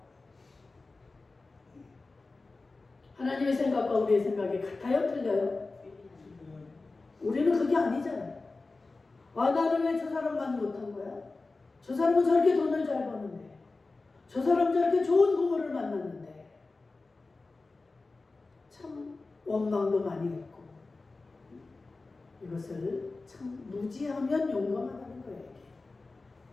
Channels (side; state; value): right; quieter; 3.6 dB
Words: 하나님의 생각과 우리의 생각이 같아요? 틀려요? 우리는 그게 아니잖아요. 나는 왜 저 사람만 못한 거야? 저 사람은 저렇게 돈을 잘 버는데, 저 사람은 저렇게 좋은 부모를 만났는데. 참 원망도 많이 했고, 이것을 참 무지하면 용감하다는 거예요.